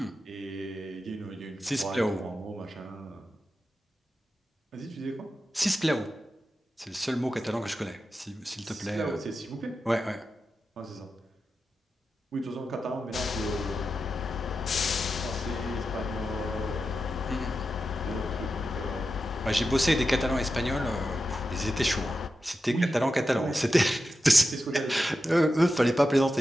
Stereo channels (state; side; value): normal; both; correlation 0.90